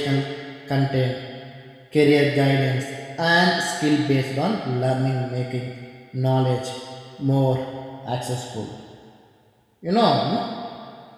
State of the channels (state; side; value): identical; both; correlation 1.00